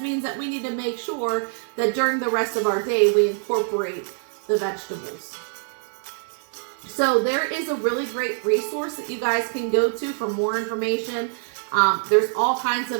that we need to make sure that during the rest of our day we incorporate the vegetables. So there is a really great resource that you guys can go to for more information. There's all kinds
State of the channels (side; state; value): left; silent; 61 dB below the other